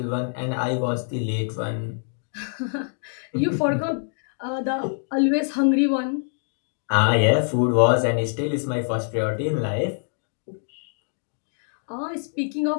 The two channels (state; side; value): silent; right; digital silence